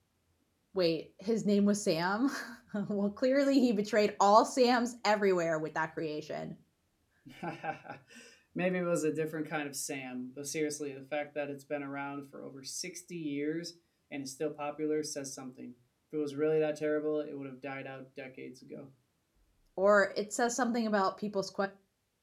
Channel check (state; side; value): identical; both; correlation 1.00